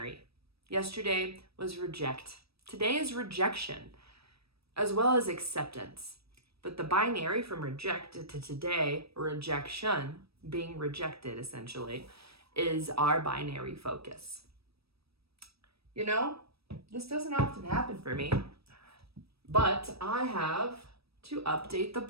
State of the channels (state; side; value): late; left; 0.77 ms